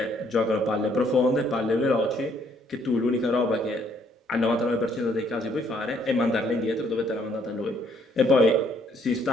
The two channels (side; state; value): both; normal; correlation 0.66